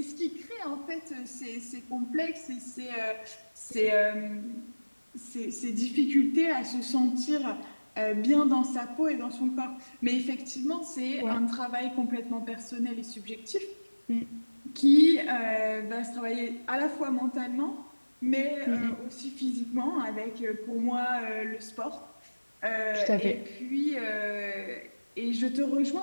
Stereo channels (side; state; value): both; inverted; correlation -1.00